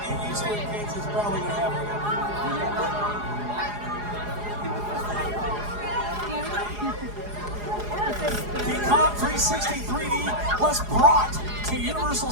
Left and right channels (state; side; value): late; left; 4.8 ms